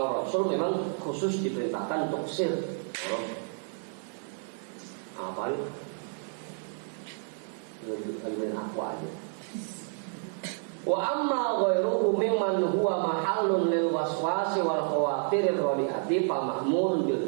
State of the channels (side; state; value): left; silent; 58 dB below the other